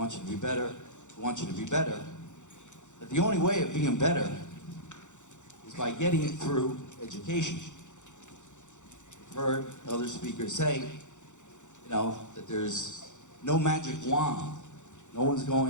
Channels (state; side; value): late; right; 0.85 ms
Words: you to be better, we want you to be better, that the only way of being better is by getting it through education. I've heard other speakers say, that there's no magic wand. No one's